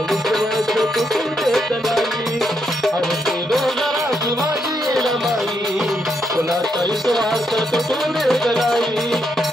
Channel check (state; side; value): normal; both; correlation 0.79